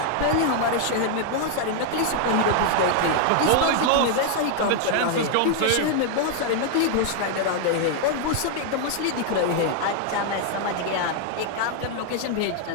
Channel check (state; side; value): different; both; correlation 0.00